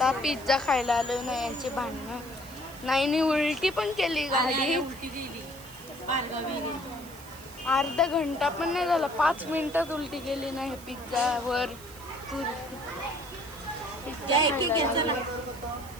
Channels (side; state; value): right; noise; hiss, 19 dB below the sound